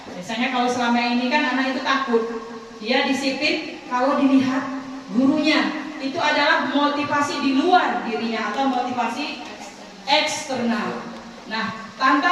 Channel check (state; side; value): identical; both; correlation 1.00